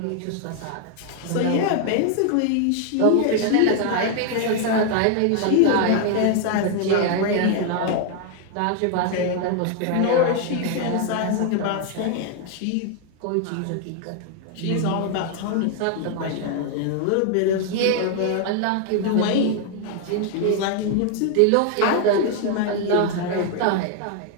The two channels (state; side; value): different; both; correlation 0.00